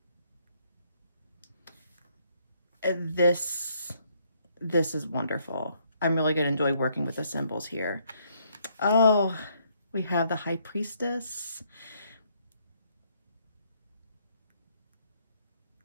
This is wonderful. I'm really going to enjoy working with the symbols here. Oh, we have the High Priestess.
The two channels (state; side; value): inverted; both; correlation -0.71